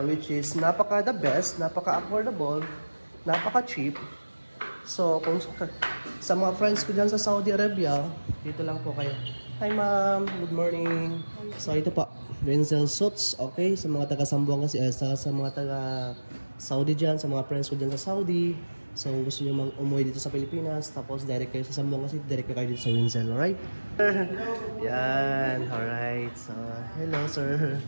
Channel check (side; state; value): both; inverted; correlation -1.00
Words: which is napaka-the best, napaka-affordable, napaka-cheap. So, kung sa mga friends ko dyan sa Saudi Arabia, dito lang po kayo. Hi ma'am, good morning. So ito po, Renzel Suits, okay? Sa mga taga Zamboanga kasi, sa mga taga Saudi dyan, sa mga friends ko dyan sa Saudi. So gusto nyo umuwi dito sa Pilipinas, tapos direct kayo sa Zamboanga City, direct kayo dito sa Renzel, alright? Yan, alright. So, hello sir.